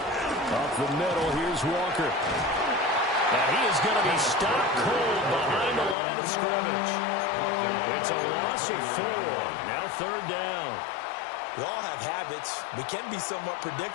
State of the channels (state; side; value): drops out; right; at 6.0 s